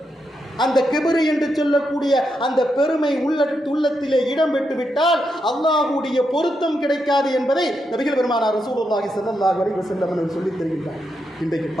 அந்த கிபிரு என்று சொல்லக்கூடிய அந்த பெருமை உள்ளத்திலே இடம் பெற்றுவிட்டால் அல்லாஹ்வுடைய பொருத்தம் கிடைக்காது என்பதை நபிகள் பெருமானார் ரசூலுல்லாஹி ஸல்லல்லாஹு அலைஹி வஸல்லம் அவர்கள் சொல்லித் தருகின்றார். இன்றைக்கு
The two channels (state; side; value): normal; both; correlation 0.83